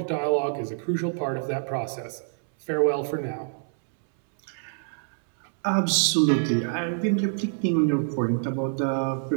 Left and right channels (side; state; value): left; silent; 61 dB below the other